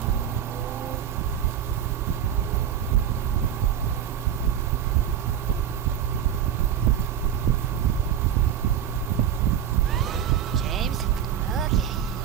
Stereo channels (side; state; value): left; quieter; 9.4 dB